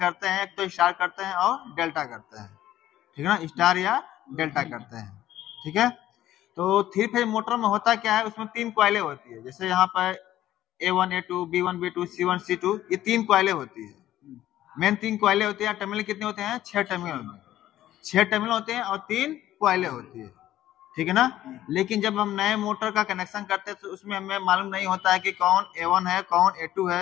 हैं, एक तो स्टार करते हैं और डेल्टा करते हैं, ठीक है ना, स्टार या डेल्टा करते हैं, ठीक है। तो थ्री फेज मोटर में होता क्या है, उसमें तीन कॉइलें होती है। जैसे यहाँ पर A1, A2, B1, B2, C1, C2, ये तीन कॉइलें होती है। मेन तीन कॉइलें होती है। टर्मिनल कितने होते हैं? 6 टर्मिनल में 6 टर्मिनल होते हैं और तीन कॉइलें होती है, ठीक है ना। लेकिन जब हम नए मोटर का कनेक्शन करते हैं तो उसमें हमें मालूम नहीं होता है कि कौन A1 है, कौन A2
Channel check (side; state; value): right; quieter; 13.3 dB